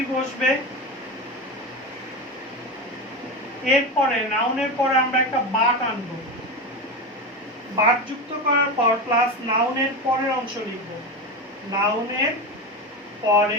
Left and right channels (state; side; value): normal; both; correlation 0.20